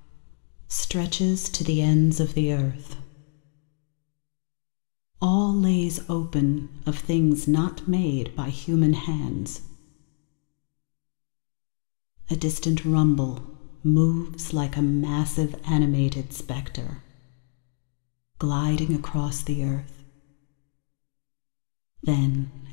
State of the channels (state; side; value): silent; right; 60 dB below the other